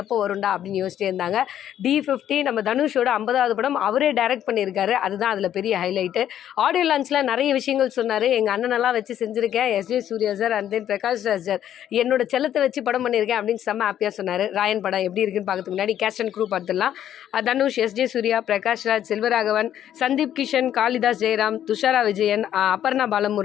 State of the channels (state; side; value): quieter; right; 10.7 dB